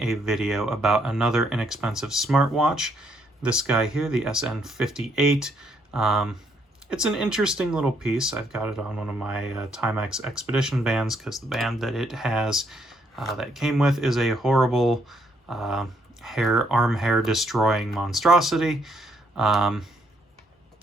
a video about another inexpensive smartwatch. This guy here, the SN58. It's an interesting little piece. I've got it on one of my Timex Expedition bands because the band that it has, that it came with, is a horrible arm hair destroying monstrosity. But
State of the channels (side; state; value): both; normal; correlation 0.72